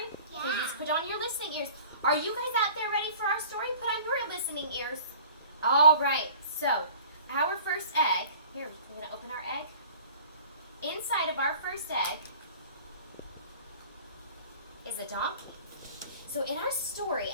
Yeah. Okay, just put on your listening ears. Are you guys out there ready for our story? Put on your listening ears. All right. So, our first egg. Here, we're going to open our egg. Inside of our first egg is a donkey. So in our story,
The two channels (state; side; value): inverted; both; correlation -0.46